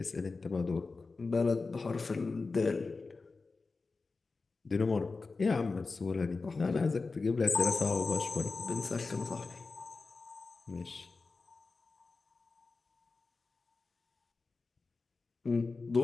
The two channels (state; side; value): quieter; right; 4.0 dB